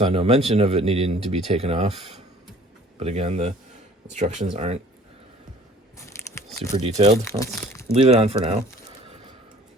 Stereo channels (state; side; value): normal; both; correlation 0.51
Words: no mention of it needing to be taken off. But again, the instructions aren't super detailed. Let's leave it on for now.